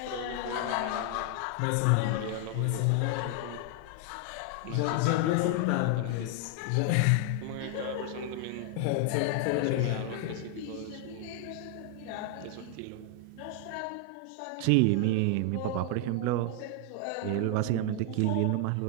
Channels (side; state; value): both; different; correlation 0.00